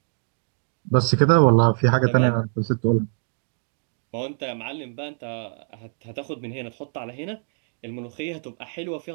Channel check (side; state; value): left; silent; 62 dB below the other